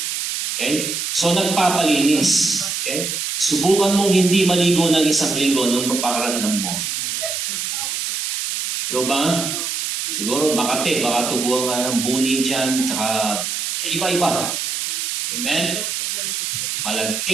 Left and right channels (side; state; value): right; noise; hiss, 2 dB below the sound